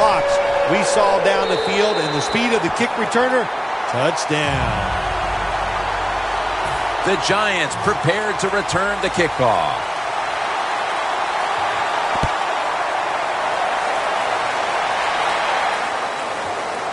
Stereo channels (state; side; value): identical; both; correlation 1.00